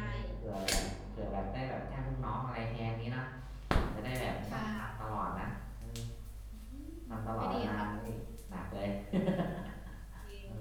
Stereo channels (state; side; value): identical; both; correlation 1.00